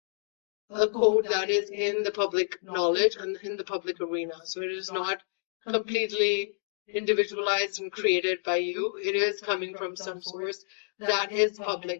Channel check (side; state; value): right; silent; digital silence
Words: a code that is in the public knowledge and in the public arena. So it is not completely individualized and created by you. It is coming from some source that is